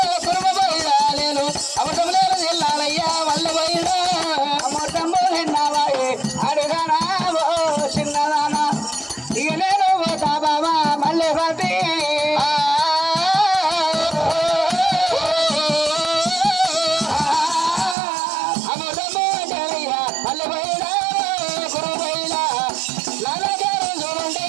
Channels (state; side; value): drops out; left; at 17.9 s